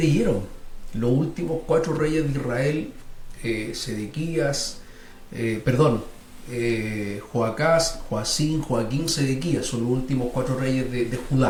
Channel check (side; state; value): both; identical; correlation 1.00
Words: Los últimos 4 reyes de Israel, Sedequías, Joacás, Joacín, Joaquín, Sedequías, son los últimos 4 reyes de